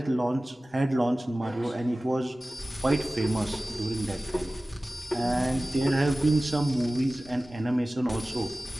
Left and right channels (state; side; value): normal; both; correlation 0.97